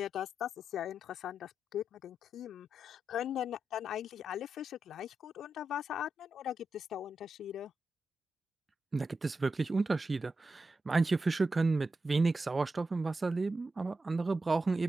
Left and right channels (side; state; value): both; normal; correlation 0.88